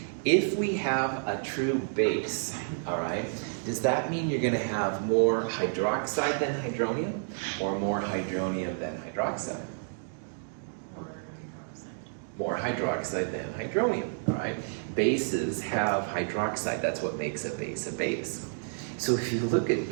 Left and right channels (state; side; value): silent; left; digital silence